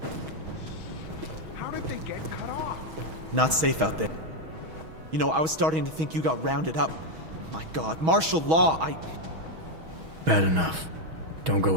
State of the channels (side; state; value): left; late; 6.3 ms